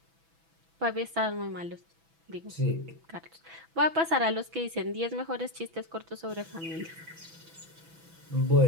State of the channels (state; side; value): late; left; 6.1 ms